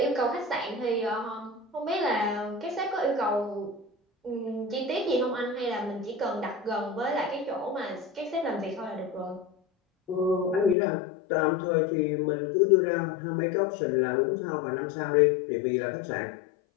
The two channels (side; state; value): right; drops out; at 10.8 s